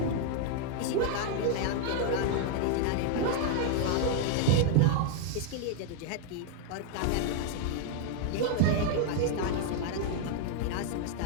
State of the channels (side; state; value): both; different; correlation 0.00